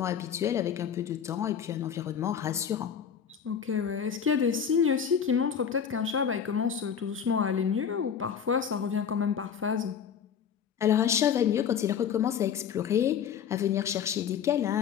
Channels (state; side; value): quieter; right; 7.8 dB